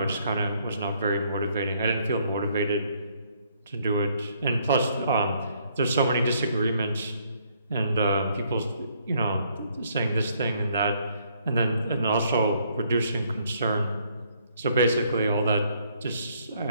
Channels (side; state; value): both; inverted; correlation -0.68